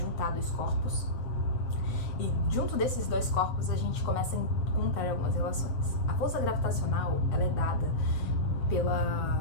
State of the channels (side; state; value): right; late; 7.6 ms